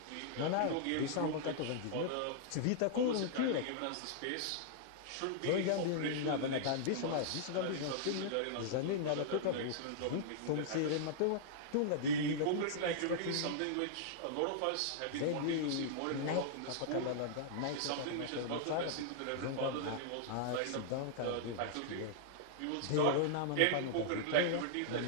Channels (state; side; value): different; both; correlation -0.01